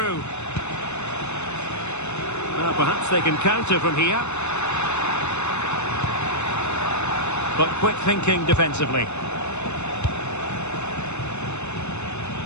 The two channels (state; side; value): late; right; 0.82 ms